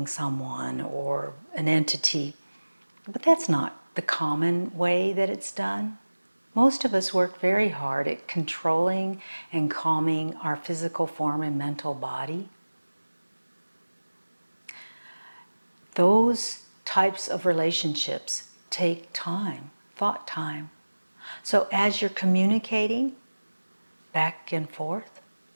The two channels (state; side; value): inverted; both; correlation -1.00